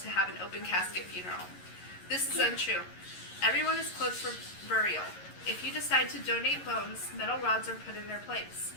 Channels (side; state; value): right; late; 11 ms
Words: have an open casket funeral. This is untrue. Everyone is clothed for burial. If you decide to donate bones, metal rods are put in their place.